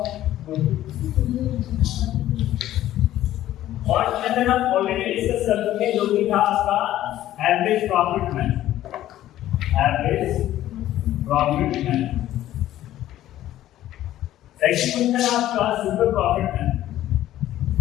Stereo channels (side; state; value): right; quieter; 13.4 dB